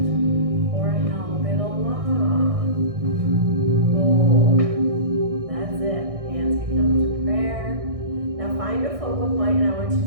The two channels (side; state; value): left; late; 1.6 ms